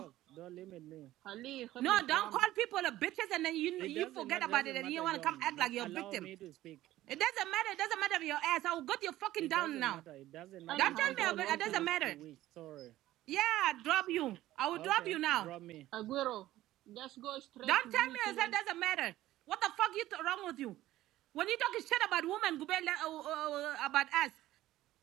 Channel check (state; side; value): quieter; left; 15.1 dB